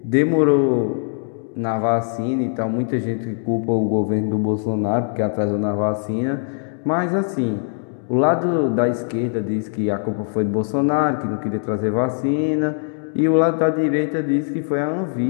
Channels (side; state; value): right; silent; 65 dB below the other